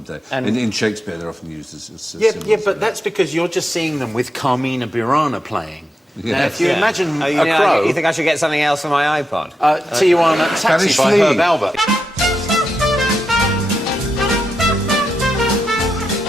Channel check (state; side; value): normal; both; correlation 0.86